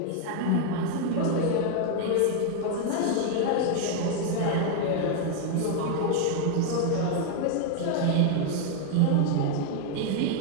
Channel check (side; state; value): both; different; correlation 0.01